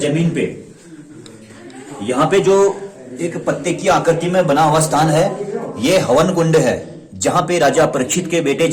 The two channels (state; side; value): identical; both; correlation 1.00